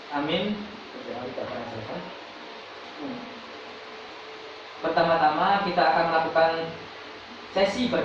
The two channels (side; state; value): both; identical; correlation 1.00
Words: Amin. Pertama-tama kita akan melakukan sesi